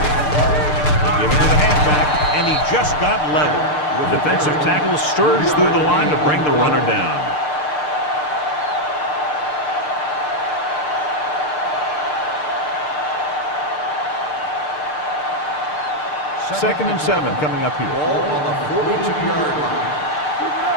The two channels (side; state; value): right; late; 6.7 ms